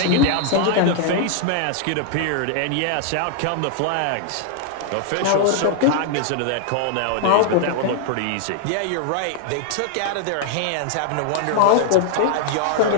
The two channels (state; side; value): different; both; correlation 0.00